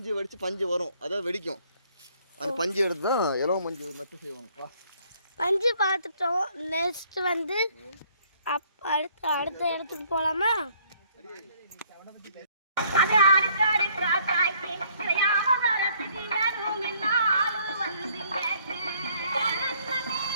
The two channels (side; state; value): both; inverted; correlation -0.63